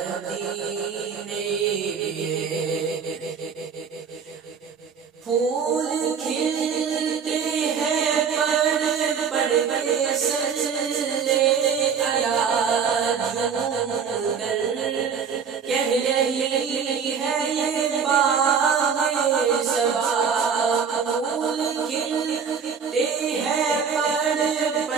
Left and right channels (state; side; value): quieter; left; 6.5 dB